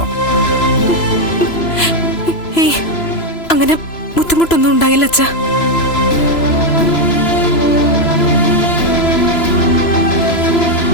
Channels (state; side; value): late; right; 3.0 ms